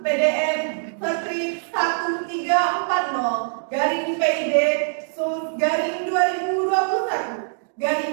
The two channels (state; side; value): silent; left; digital silence